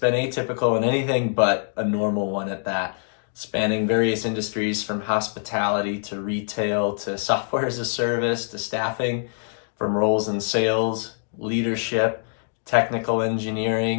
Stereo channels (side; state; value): right; silent; digital silence